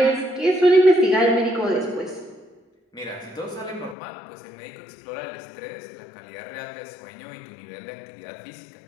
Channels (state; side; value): drops out; right; at 4.0 s